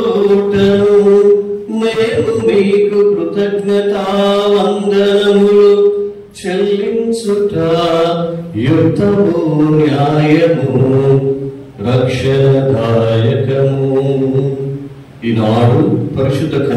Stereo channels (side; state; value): both; identical; correlation 1.00